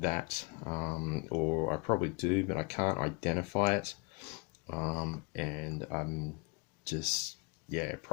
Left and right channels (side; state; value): right; quieter; 30.2 dB